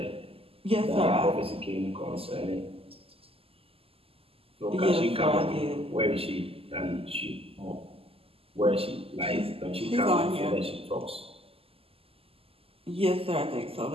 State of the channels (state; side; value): late; left; 0.28 ms